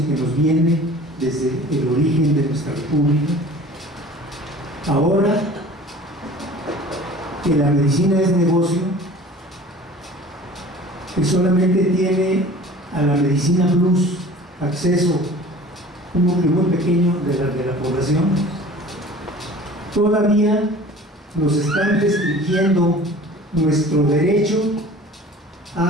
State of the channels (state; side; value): normal; both; correlation 0.44